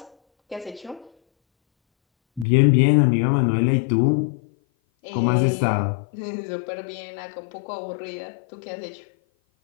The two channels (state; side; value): drops out; right; at 2.5 s